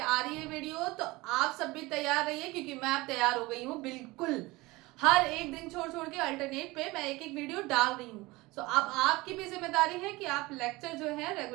आ रही है वीडियो, तो आप सब भी तैयार रहिए क्योंकि मैं अब तैयार हो गई हूँ। बिल्कुल हर एक दिन छोड़ छोड़ के अल्टरनेट पे मैं एक एक वीडियो डाल रही हूँ। सो अब आपकी भी जिम्मेदारी है कि आप लेक्चर जो है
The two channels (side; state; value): left; quieter; 21.5 dB